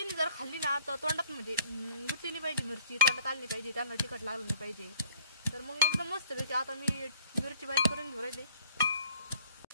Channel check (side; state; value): both; inverted; correlation -0.57